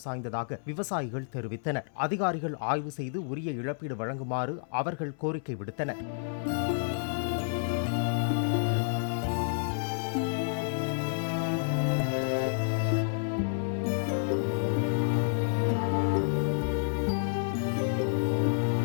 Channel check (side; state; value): right; silent; 58 dB below the other